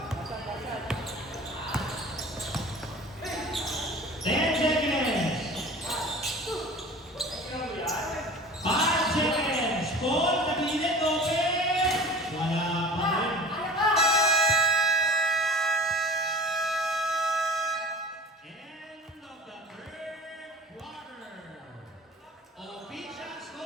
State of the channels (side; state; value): both; normal; correlation 0.40